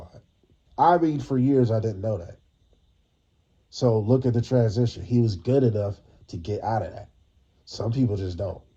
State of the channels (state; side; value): identical; both; correlation 1.00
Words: I mean, for years, I didn't know that. So look at the transition. He was good enough to get out of that. Some people just don't.